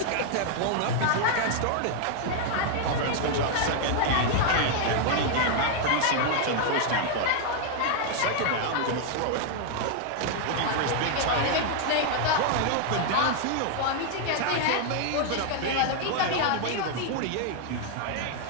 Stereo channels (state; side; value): different; both; correlation 0.00